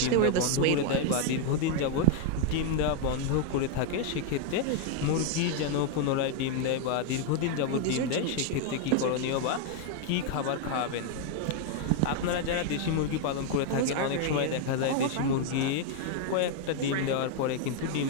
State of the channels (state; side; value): different; both; correlation 0.00